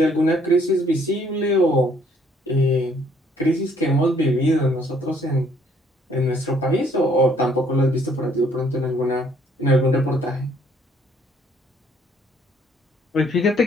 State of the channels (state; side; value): normal; both; correlation 0.64